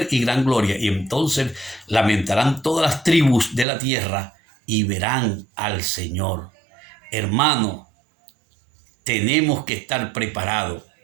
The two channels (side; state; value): left; drops out; at 3.7 s